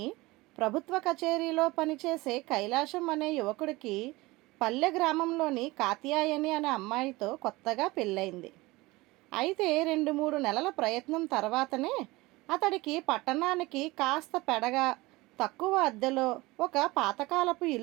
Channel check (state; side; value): quieter; left; 21.2 dB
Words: ప్రభుత్వ కచేరీలో పనిచేసే కైలాసం అనే యువకుడికి పల్లె గ్రామంలోని కాత్యాయని అనే అమ్మాయితో కొత్తగా పెళ్ళయింది. అయితే 2-3 నెలల ప్రయత్నం తర్వాతనే అతడికి పట్టణానికి కాస్త పెడగా తక్కువ అద్దెలో ఒక పాతకాలపు